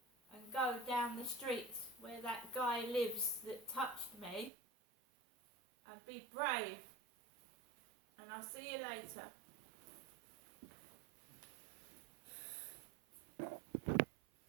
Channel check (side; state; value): left; drops out; at 4.5 s